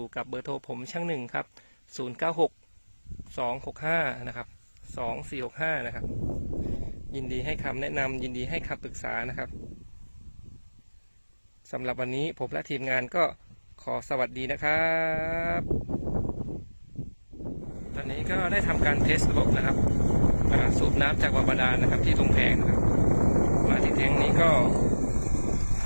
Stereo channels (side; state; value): both; inverted; correlation -1.00